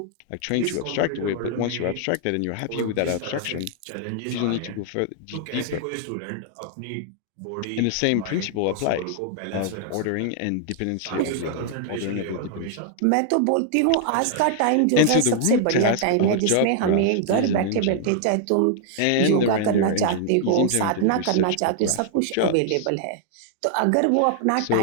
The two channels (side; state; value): both; different; correlation -0.01